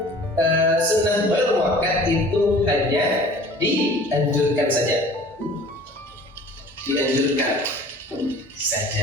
sunnah ghairu muakkad itu hanya dianjurkan saja.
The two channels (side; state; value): both; normal; correlation 0.47